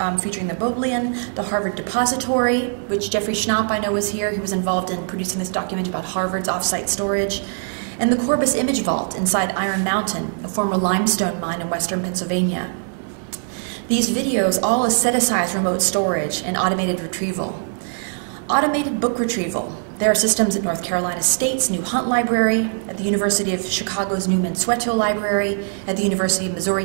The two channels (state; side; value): silent; left; digital silence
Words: the Bodleian, the Harvard Depository, which Jeffrey Schnapp, I know, was here. He was involved in producing this documentary about Harvard's off-site storage, and the Corbis Image Vault inside Iron Mountain, a former limestone mine in western Pennsylvania. These videos all aestheticize remote storage and automated retrieval. Automated book retrieval. There are systems at North Carolina State's new Hunt Library, at the University of Chicago's new Mansueto Library, at the University of Missouri,